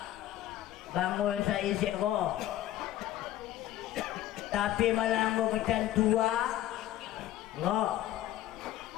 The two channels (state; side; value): quieter; right; 13.7 dB